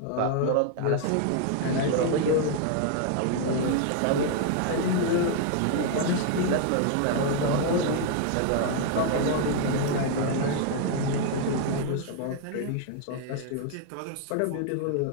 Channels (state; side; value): different; both; correlation 0.00